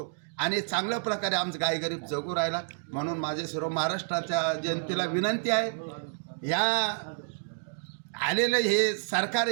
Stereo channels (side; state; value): left; silent; digital silence